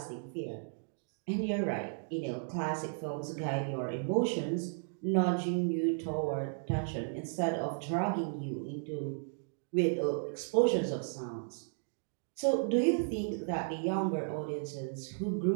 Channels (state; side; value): silent; left; digital silence